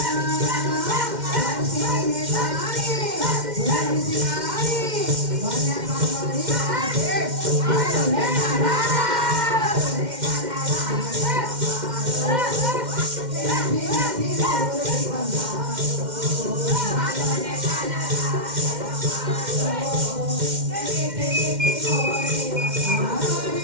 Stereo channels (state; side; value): late; left; 2.1 ms